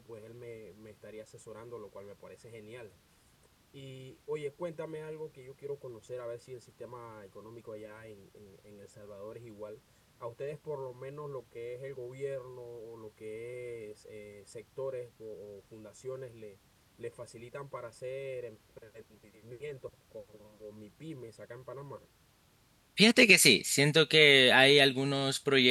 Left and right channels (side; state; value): both; identical; correlation 1.00